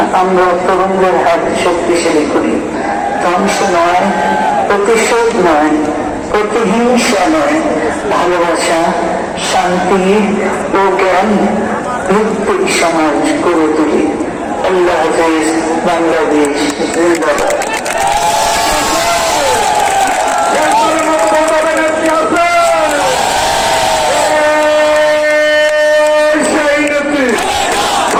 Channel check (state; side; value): identical; both; correlation 1.00